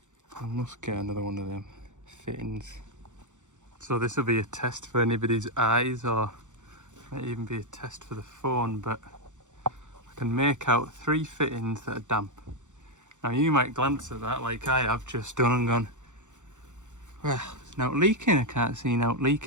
I must get another one of them fittings. So this will be a test for anybody's eyes, or might even be a test for the phone, but I can make out 3 fittings that are damp. Now you might glance at that like I have just done and gone, well, it's not leaking, I can't see out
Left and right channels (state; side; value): late; left; 0.85 ms